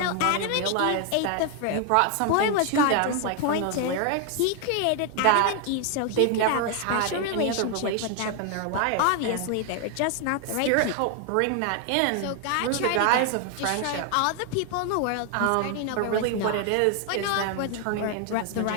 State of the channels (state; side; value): different; both; correlation 0.00